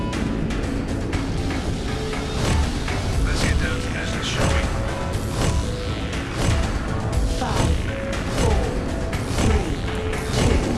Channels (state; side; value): identical; both; correlation 1.00